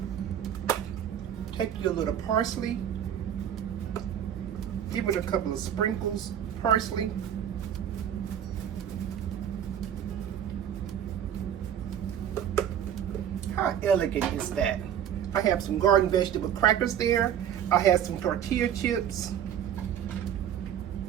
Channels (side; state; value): left; quieter; 9.6 dB